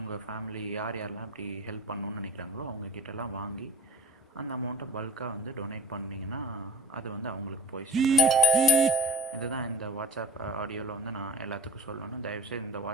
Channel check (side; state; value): both; normal; correlation 0.37